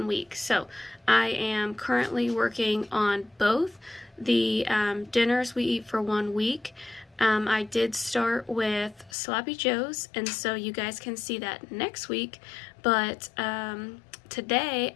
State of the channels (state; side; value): drops out; right; at 9.1 s